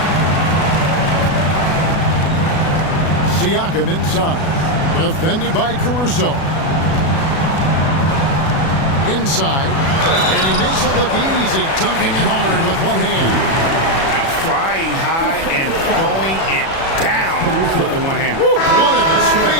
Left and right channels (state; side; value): late; right; 37 ms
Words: Siakam inside. Defended by Caruso. Inside. And he makes it look easy. Dunking it hard with one hand. Flying high and throwing it down with the one hand. One of his